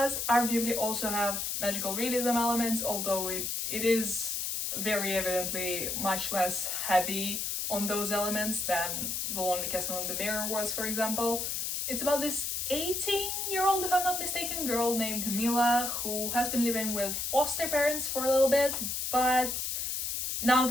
arguably also have magical realism elements, although it is very evidently much less heavy on those elements than The Lonely Castle in the Mirror was, for example. It's about this 18-year-old, if I'm not mistaken, girl named Mila who has been living with foster parents for a little bit, but now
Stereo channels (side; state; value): left; noise; hiss, 2 dB below the sound